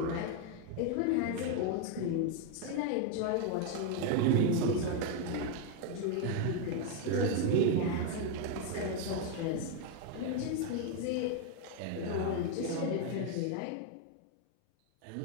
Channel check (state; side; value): different; both; correlation 0.01